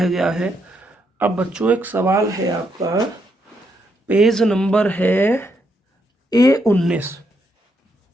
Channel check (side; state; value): both; normal; correlation 0.78